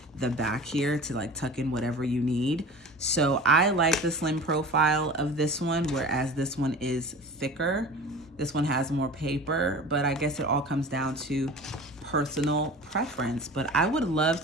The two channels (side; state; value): both; normal; correlation 0.38